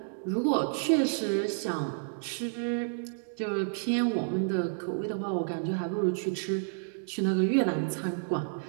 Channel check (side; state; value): left; silent; digital silence